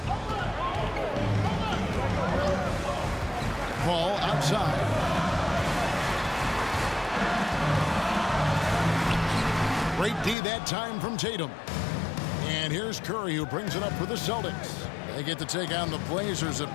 Paul outside. Great D that time from Tatum. And here's Curry, who brings it up for the Celtics. They get to take on the Blazers at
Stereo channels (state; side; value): drops out; right; at 10.4 s